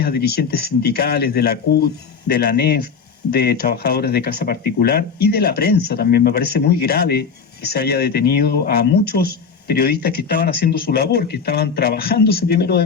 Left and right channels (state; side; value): quieter; right; 5.8 dB